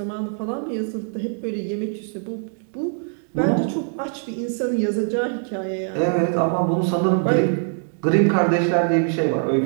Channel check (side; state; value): left; silent; 64 dB below the other